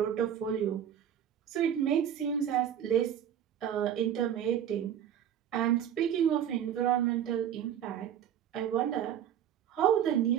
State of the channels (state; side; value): quieter; left; 9.6 dB